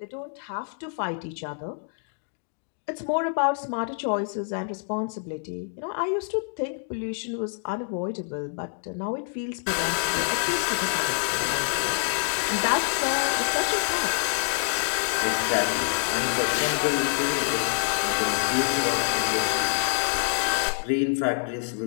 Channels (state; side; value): silent; right; digital silence